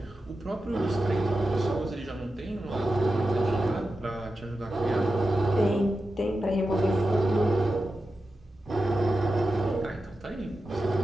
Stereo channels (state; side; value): normal; both; correlation 0.91